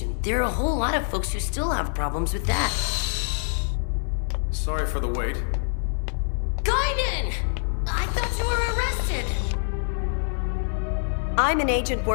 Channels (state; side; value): silent; right; 62 dB below the other